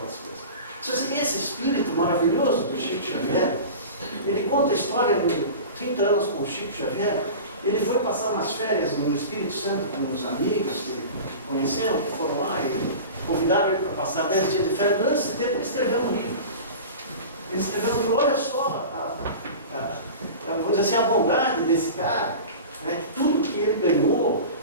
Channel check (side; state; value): both; inverted; correlation -0.34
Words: coisas. Então, assim, esse espírito maravilhoso do Chico Xavier, ele conta a história de 30 anos com o Chico Xavier. Ele foi passar umas férias no Espírito Santo com uns amigos que conheceram, que foram lá e convidaram ele para passar 10 dias de férias. Durante esse tempo ele escreveu um livro. Ele escreveu um livro, olha só, vamos dizer assim, a bondade desse cara, né, que tudo que ele ganhou,